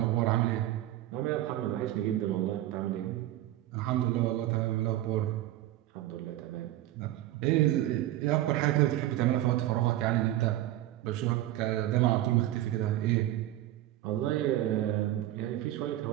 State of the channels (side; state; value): left; quieter; 14.4 dB